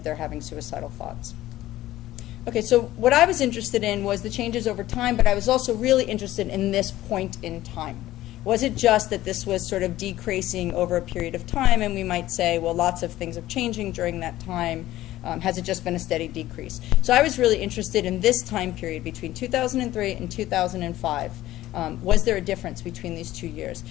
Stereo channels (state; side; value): quieter; right; 15.2 dB